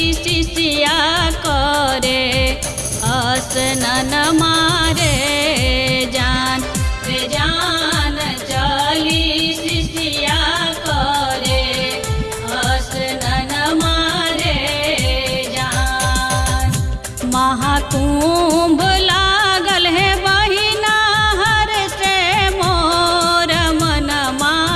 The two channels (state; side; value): identical; both; correlation 1.00